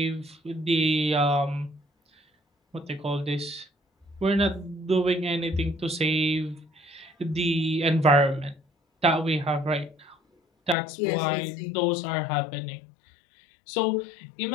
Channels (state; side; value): drops out; right; at 10.8 s